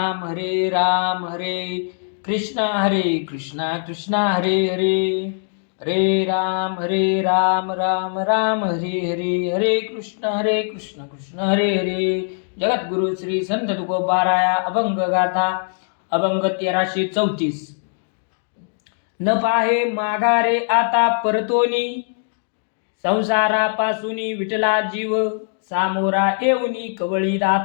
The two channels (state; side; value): silent; right; digital silence